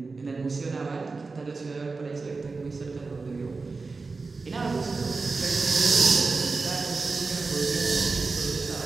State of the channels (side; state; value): left; quieter; 4.1 dB